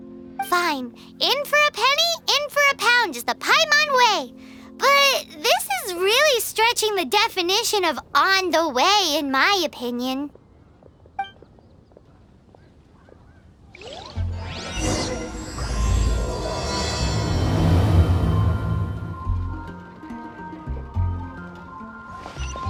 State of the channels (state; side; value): identical; both; correlation 1.00